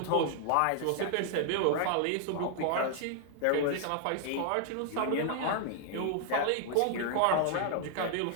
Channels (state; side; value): different; both; correlation 0.00